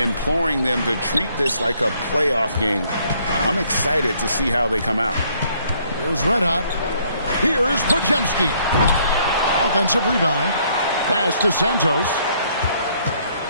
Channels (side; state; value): both; inverted; correlation -0.66